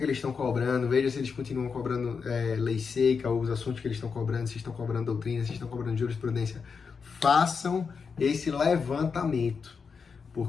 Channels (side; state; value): right; quieter; 5.6 dB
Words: eles estão cobrando, veja se eles continuam cobrando lei seca, ou os assuntos que eles estão cobrando, se estão cobrando doutrina, se estão cobrando jurisprudência. Façam esse levantamento,